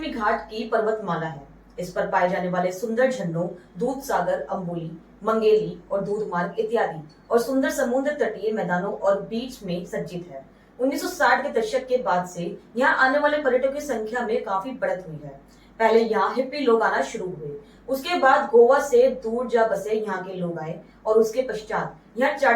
घाट की पर्वतमाला है। इस पर पाए जाने वाले सुंदर झरनों दूध सागर, अम्बोली, मंगेली और दूध मार्ग इत्यादि और सुंदर समुद्र तटीय मैदानों और बीच में सज्जित है। 1960 के दशक के बाद से यहाँ आने वाले पर्यटकों की संख्या में काफी बढ़त हुई है। पहले यहाँ हिप्पी लोग आना शुरू हुए, उसके बाद गोवा से दूर जा बसे यहाँ के लोग आए और उसके पश्चात यहाँ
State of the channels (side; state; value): both; identical; correlation 1.00